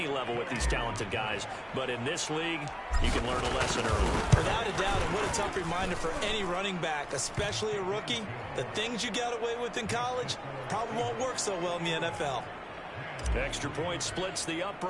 level with these talented guys, but in this league, you can learn a lesson early. Without a doubt, and what a tough reminder for any running back, especially a rookie. The things you got away with in college probably won't work so well in the NFL. Extra point splits the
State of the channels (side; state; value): both; identical; correlation 1.00